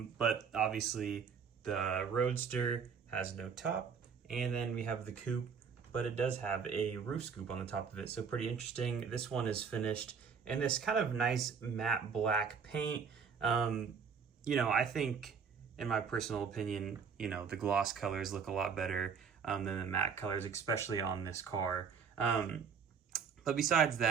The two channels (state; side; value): quieter; left; 6.3 dB